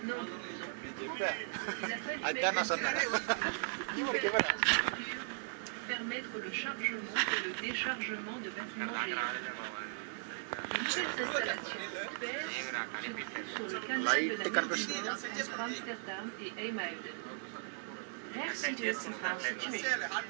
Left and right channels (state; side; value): silent; left; digital silence